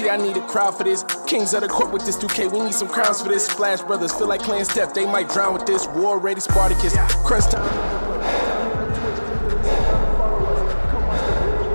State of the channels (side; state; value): both; inverted; correlation -1.00